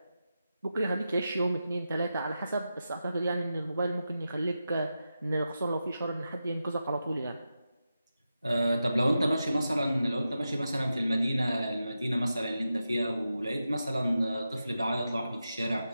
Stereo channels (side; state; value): both; inverted; correlation -0.90